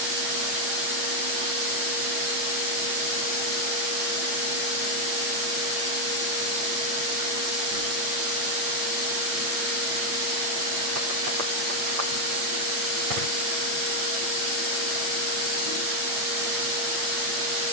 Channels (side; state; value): left; late; 8.7 ms